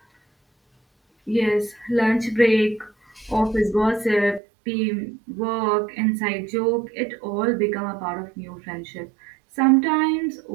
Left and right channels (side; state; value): left; drops out; at 4.4 s